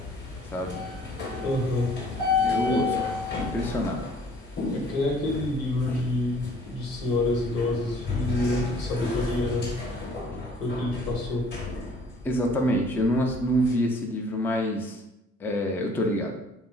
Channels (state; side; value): normal; both; correlation 0.56